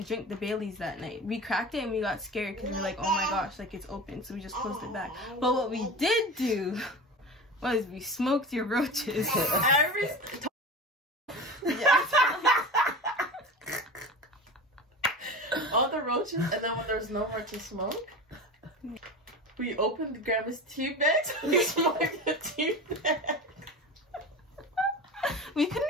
drink the Bailey's that night. We cracked it and we got scared because we were like, oh my gosh, like it's open. So we just closed it back. But what we did do was we smoked your roaches. All the roaches, and then when there's no more to smoke, we opened Grandma's tea bag, so we smoked the tea bag. We couldn't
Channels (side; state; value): both; normal; correlation 0.31